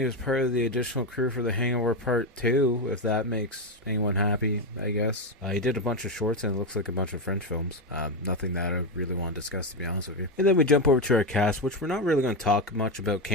was part of the additional crew for The Hangover Part 2, if that makes anyone happy, I guess. He did a bunch of shorts and it looks like a bunch of French films. Nothing that I really want to discuss, to be honest with you. And then we jump over to our cast, which we're not really going to talk much about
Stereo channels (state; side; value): normal; both; correlation 0.10